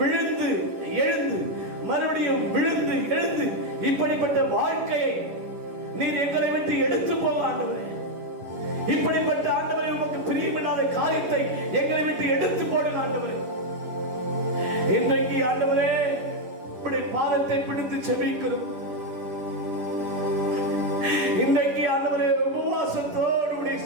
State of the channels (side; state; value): left; late; 11 ms